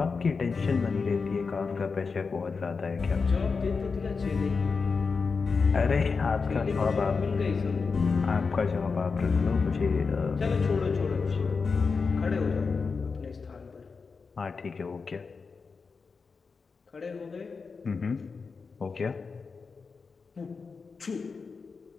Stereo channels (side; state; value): right; quieter; 4.9 dB